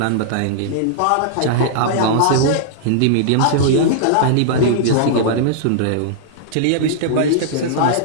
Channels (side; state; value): both; different; correlation -0.02